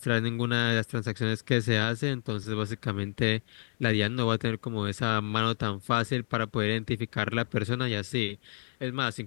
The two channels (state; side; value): silent; right; digital silence